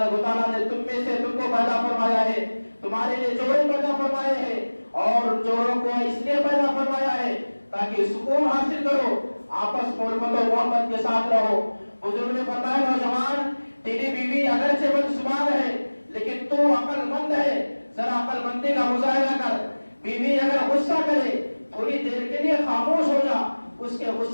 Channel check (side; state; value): both; inverted; correlation -1.00